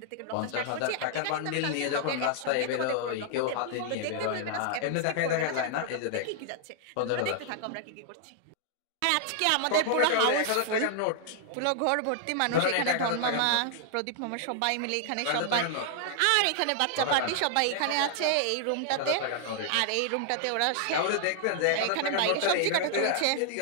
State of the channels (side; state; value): both; different; correlation -0.01